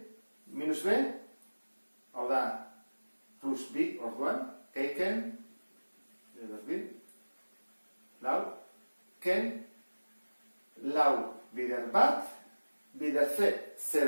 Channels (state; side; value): inverted; both; correlation -1.00